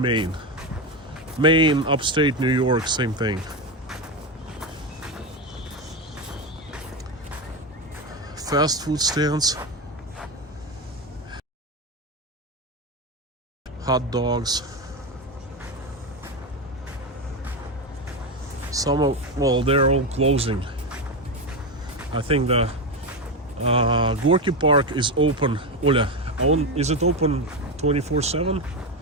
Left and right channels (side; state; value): both; normal; correlation 0.14